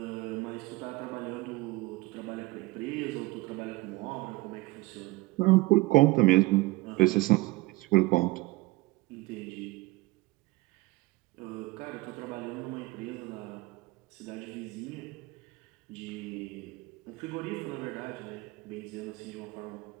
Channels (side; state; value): left; quieter; 21.3 dB